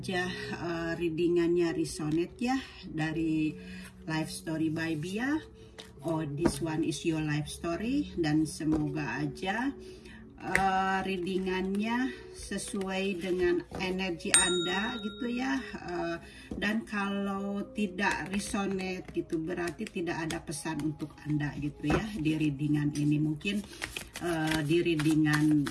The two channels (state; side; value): identical; both; correlation 1.00